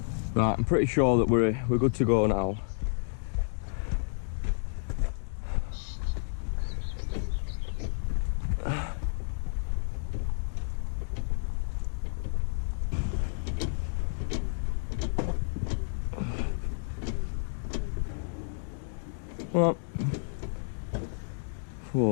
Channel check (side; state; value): right; silent; digital silence